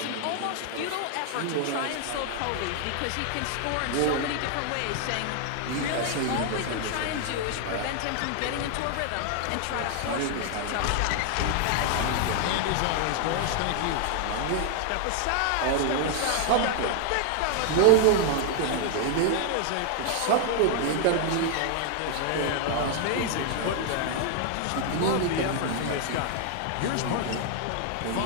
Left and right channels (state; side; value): different; both; correlation 0.00